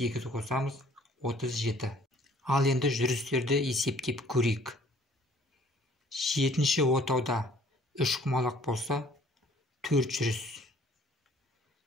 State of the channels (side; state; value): both; normal; correlation 0.56